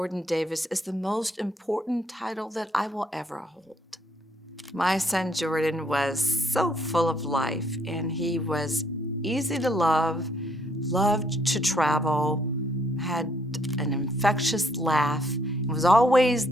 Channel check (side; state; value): both; normal; correlation 0.68